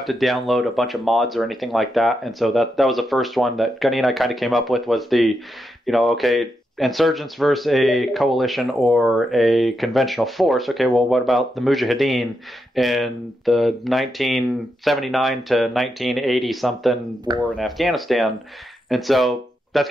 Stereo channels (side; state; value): both; normal; correlation 0.84